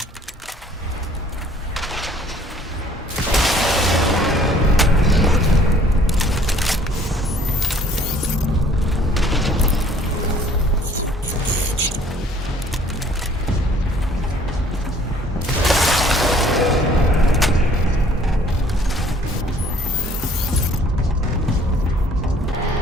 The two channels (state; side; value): normal; both; correlation 0.57